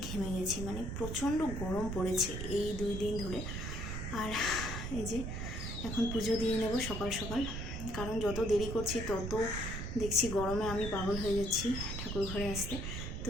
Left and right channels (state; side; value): noise; right; rumble, 4 dB below the sound